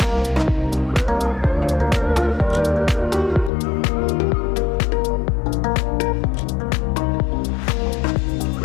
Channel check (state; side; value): drops out; right; at 3.5 s